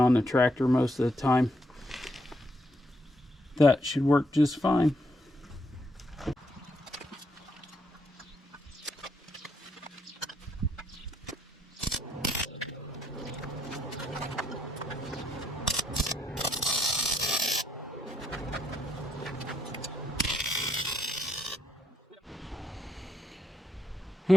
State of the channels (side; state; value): both; normal; correlation 0.76